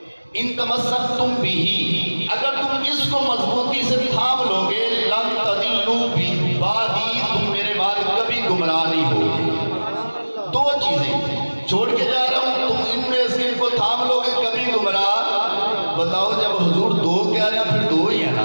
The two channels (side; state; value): both; inverted; correlation -1.00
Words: ان تمسکتم بہ، اگر تم اس کو مضبوطی سے تھام لو گے، لن تضلوا بعدی، تم میرے بعد کبھی گمراہ نہیں ہوگے۔ دو چیزیں چھوڑ کے جا رہا ہوں، تم ان میں سے ان کو تھام لو گے کبھی گمراہ۔ بتاؤ جب حضور دو کہہ رہے ہیں پھر دو ہی ہے